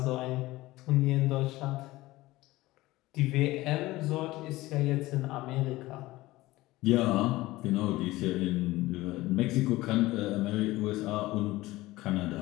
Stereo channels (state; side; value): quieter; right; 18.5 dB